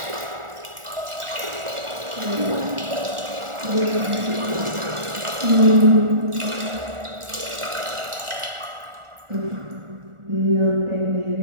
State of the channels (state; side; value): late; left; 1.4 ms